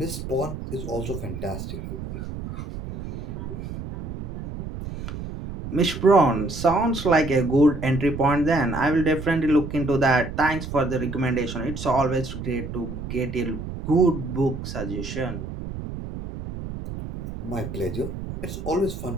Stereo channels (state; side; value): noise; right; rumble, 8 dB below the sound